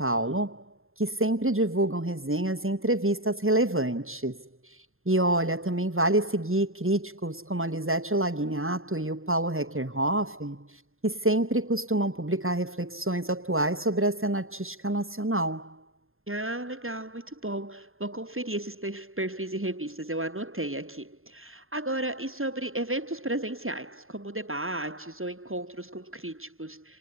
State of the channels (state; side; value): late; left; 0.61 ms